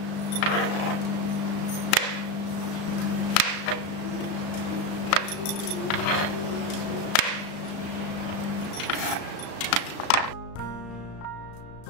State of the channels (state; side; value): late; right; 35 ms